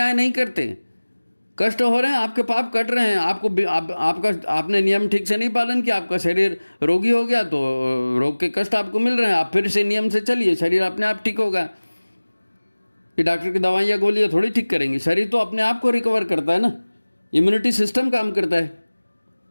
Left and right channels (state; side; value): inverted; both; correlation -1.00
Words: नहीं करते। कष्ट हो रहे हैं, आपके पाप कट रहे हैं, आपने नियम ठीक से नहीं पालन किया, आपका शरीर रोगी हो गया, तो रोग के कष्ट आपको मिल रहे हैं, आप फिर से नियम से चलिए, शरीर अपने आप ठीक होगा। कि डॉक्टर की दवाइयाँ गोलियाँ थोड़ी ठीक करेंगी, शरीर तो अपने आप को रिकवर करता है ना, इम्यूनिटी सिस्टम काम करता है।